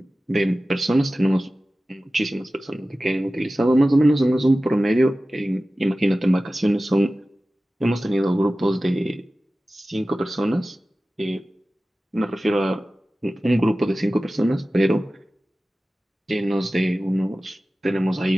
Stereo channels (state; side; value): normal; both; correlation 0.96